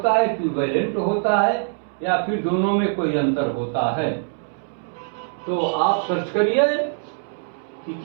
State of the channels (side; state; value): left; silent; 63 dB below the other